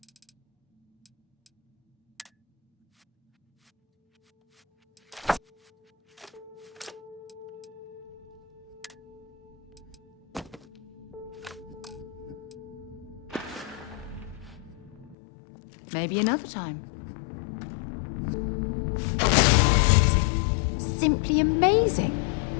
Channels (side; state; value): right; drops out; at 15.2 s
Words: Maybe another time. Amazing. Simply amazing.